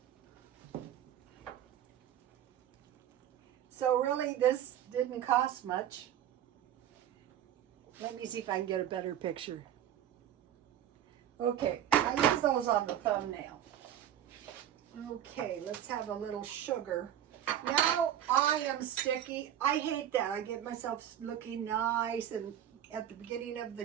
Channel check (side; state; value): left; quieter; 10.8 dB